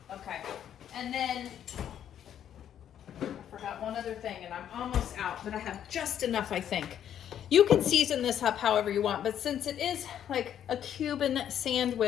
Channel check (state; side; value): quieter; right; 9.9 dB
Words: Okay, and then I forgot one other thing, and I'm almost out, but I have just enough, I think. You can season this up however you want, but since it is like a Cuban